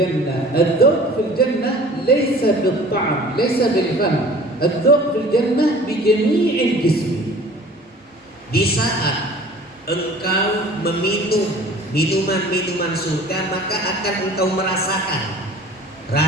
الذوق في الجنة ليس بالطعم ليس بالفم، الذوق في الجنة بجميع الجسم. Di saat engkau meminum minuman-minuman surga, maka akan engkau merasakan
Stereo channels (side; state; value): both; normal; correlation 0.46